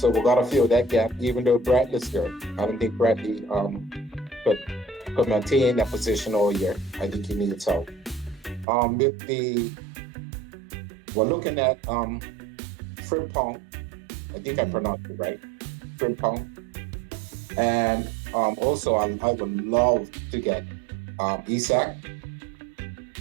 we got to fill that gap. Even though Bradley's there, I don't think Bradley could maintain that position all year. I think he needs help. We're looking at Frimpong. I think I pronounced it right. Frimpong. And also, I would love to get Isak.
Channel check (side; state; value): left; drops out; at 8.7 s